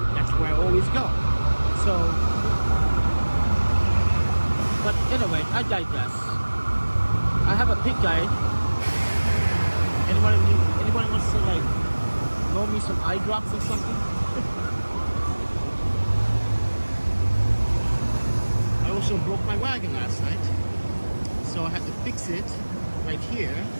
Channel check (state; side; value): inverted; both; correlation -1.00